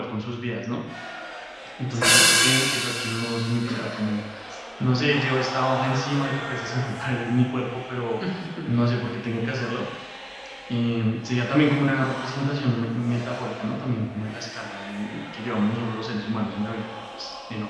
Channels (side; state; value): both; identical; correlation 1.00